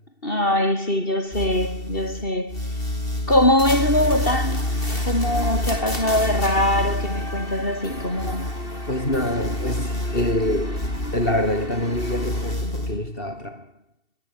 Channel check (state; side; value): late; right; 2.7 ms